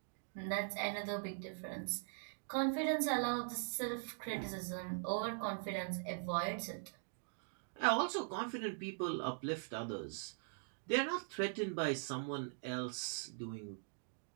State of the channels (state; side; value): silent; left; digital silence